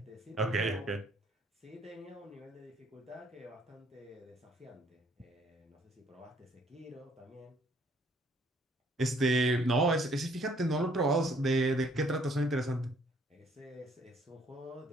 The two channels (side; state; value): both; normal; correlation 0.63